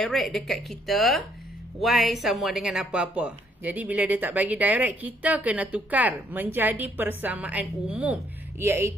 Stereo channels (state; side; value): normal; both; correlation 0.68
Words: dekat kita Y sama dengan apa-apa. Jadi bila dia tak bagi direct, kita kena tukar menjadi persamaan umum,